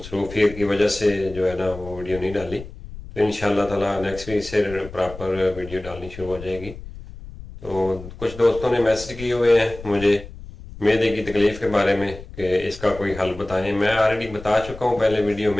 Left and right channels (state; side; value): noise; left; rumble, 14 dB below the sound